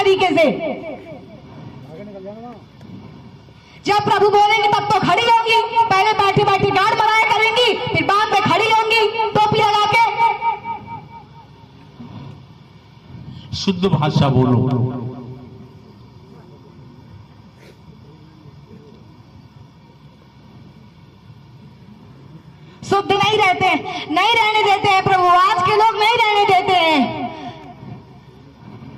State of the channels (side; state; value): both; identical; correlation 1.00